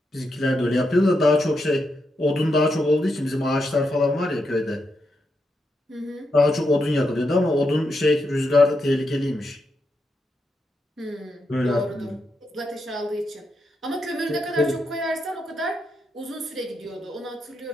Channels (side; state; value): both; normal; correlation 0.84